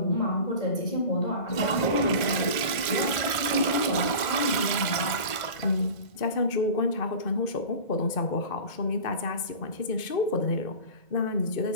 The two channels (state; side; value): late; right; 2.1 ms